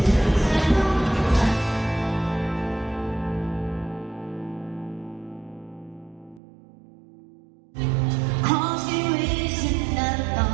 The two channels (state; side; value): drops out; left; at 6.4 s